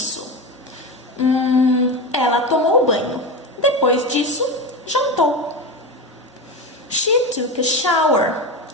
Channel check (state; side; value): normal; both; correlation 0.21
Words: Ela tomou banho. Depois disso, jantou. She took a shower.